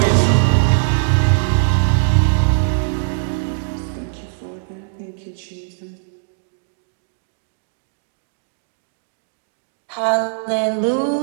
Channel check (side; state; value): left; silent; digital silence